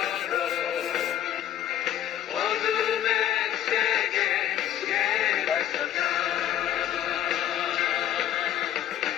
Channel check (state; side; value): quieter; right; 11.3 dB